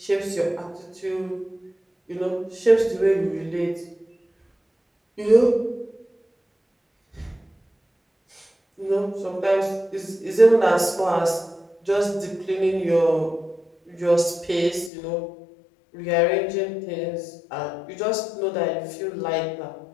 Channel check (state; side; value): drops out; right; at 14.9 s